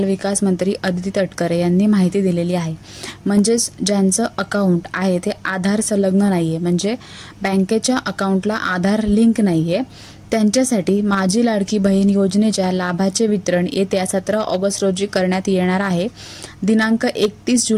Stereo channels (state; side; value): identical; both; correlation 1.00